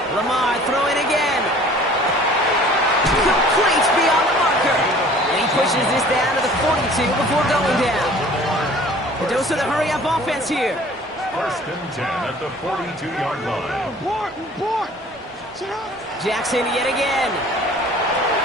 Lamar throwing again. Complete beyond the marker. And he pushes this down to the 42 before going down. A dose of the hurry-up offense here. 1st and 10 at the 42-yard line. Jackson yet again.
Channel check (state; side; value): normal; both; correlation 0.49